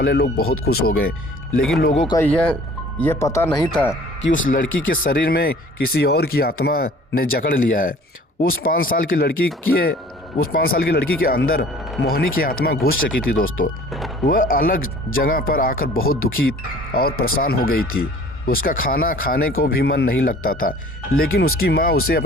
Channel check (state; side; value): normal; both; correlation 0.49